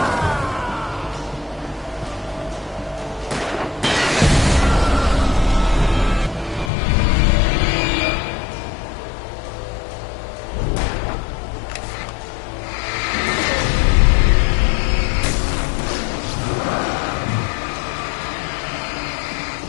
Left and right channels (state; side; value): drops out; right; at 6.7 s